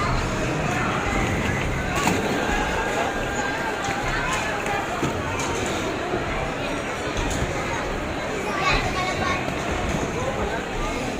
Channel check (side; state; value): both; identical; correlation 1.00